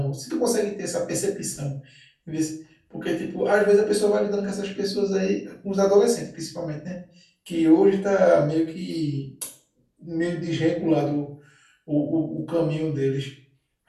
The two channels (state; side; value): identical; both; correlation 1.00